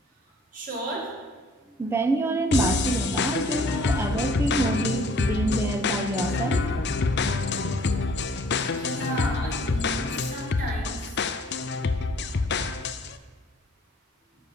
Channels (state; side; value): normal; both; correlation 0.58